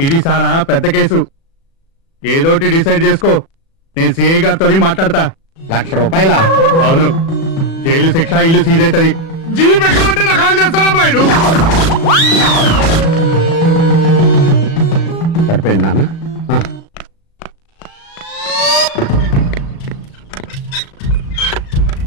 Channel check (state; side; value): late; right; 36 ms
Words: ఇది సారా పెద్ద కేసు, ఏదోటి డిసైడ్ చేసుకో. నేను సిఐ గారితో మాట్లాడతా. ₹1,00,000? అవును, జైలు శిక్ష, ఇల్లు సీజ్ అవుతుంది. జీప్ ఎక్కమంటే నాకు కాల్ చేస్తాడమ్మా ఇడు. సరిపోయింది నాన్న.